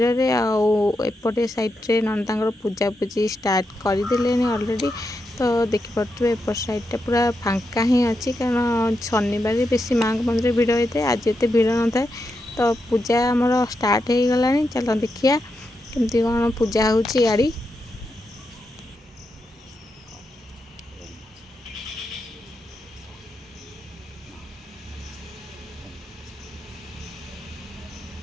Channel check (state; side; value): normal; both; correlation 0.85